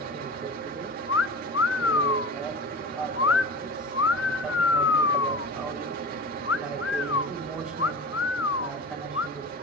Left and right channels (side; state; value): both; normal; correlation 0.33